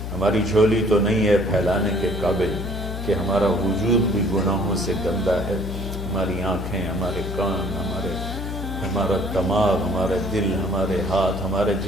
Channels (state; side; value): noise; left; hum, 5 dB below the sound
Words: ہماری جھولی تو نہیں ہے پھیلانے کے قابل، کہ ہمارا وجود بھی گناہوں سے گندا ہے، ہماری آنکھیں، ہمارے کان، ہمارا دماغ، ہمارے دل، ہمارے ہاتھ، ہمارے